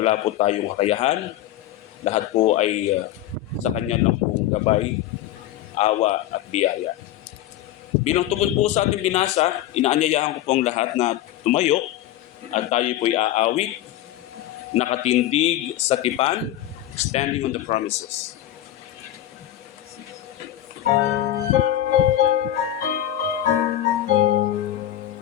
po tayong kakayahan, lahat po ay sa Kanya lang pong gabay, awa at biyaya. Bilang tugon po sa ating binasa, inaanyayahan ko pong lahat na tumayo at tayo po ay aawit, nakatindig sa tipan, standing on the promises.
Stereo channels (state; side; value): quieter; right; 12.9 dB